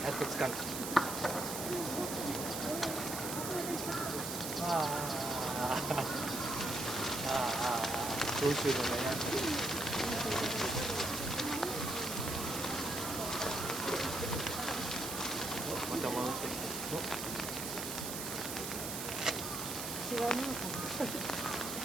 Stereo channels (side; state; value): right; noise; hiss, 5 dB below the sound